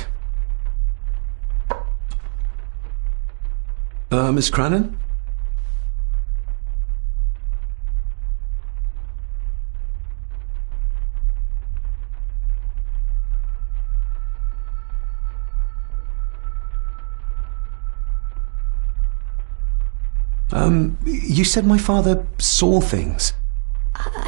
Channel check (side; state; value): left; silent; digital silence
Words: Miss Crannan? You said my father saw things.